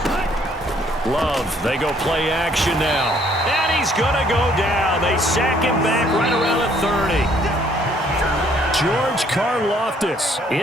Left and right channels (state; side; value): normal; both; correlation 0.64